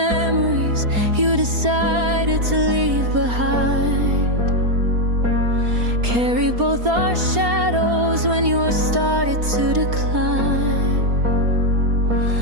you decided to leave behind. Carry both our shadows when yours started to decline.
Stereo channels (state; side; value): late; left; 4.3 ms